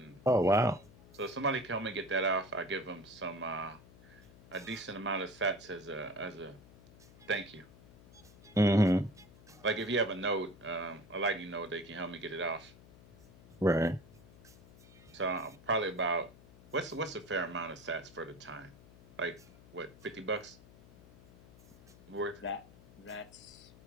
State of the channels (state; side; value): noise; left; hum, 22 dB below the sound